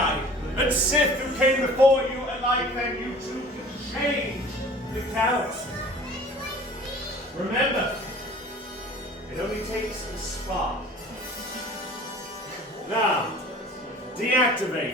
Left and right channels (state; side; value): normal; both; correlation 0.46